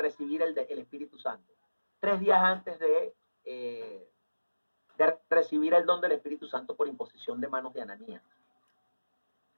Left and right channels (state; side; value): inverted; both; correlation -1.00